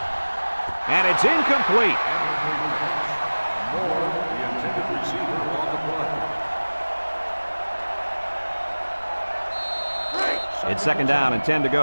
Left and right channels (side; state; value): both; inverted; correlation -1.00